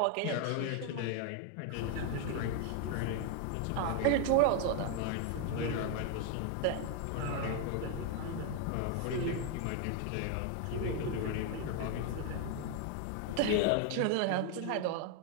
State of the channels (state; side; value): different; both; correlation 0.00